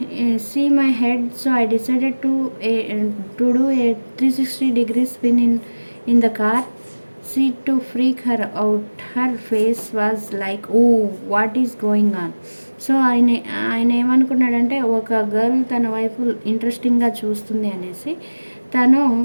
see my head. So I decided to do a 360 spin in the car seat to freak her out. Her face was like, oh, what is going on? So ఆయన ఏమనుకున్నాడంటే ఒక girl తన వైపు ఇంట్రెస్టింగ్గా చూస్తుంది అనేసి తను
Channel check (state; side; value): inverted; both; correlation -1.00